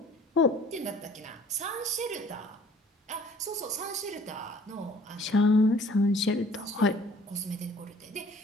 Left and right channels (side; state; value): both; normal; correlation 0.53